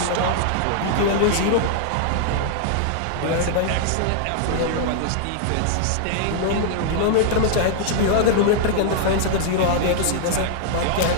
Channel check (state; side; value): different; both; correlation -0.01